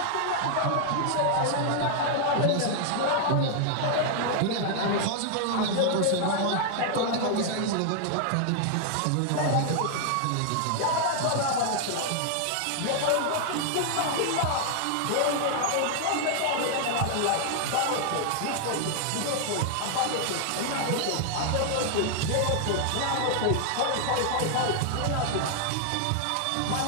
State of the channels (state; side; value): different; both; correlation 0.00